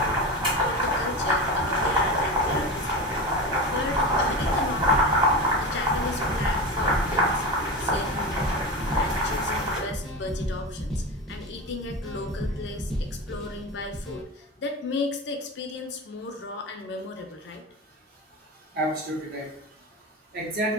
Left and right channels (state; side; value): normal; both; correlation 0.23